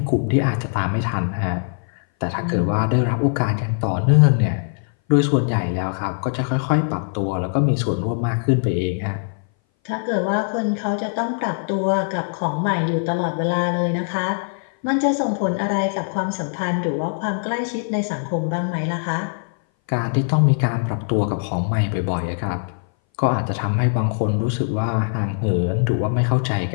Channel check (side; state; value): right; silent; 59 dB below the other